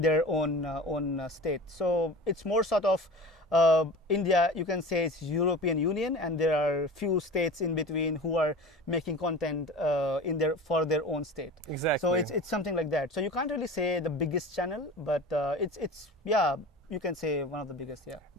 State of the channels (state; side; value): normal; both; correlation 0.36